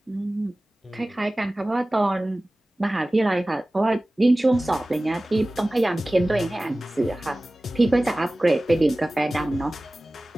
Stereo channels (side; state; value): both; normal; correlation 0.98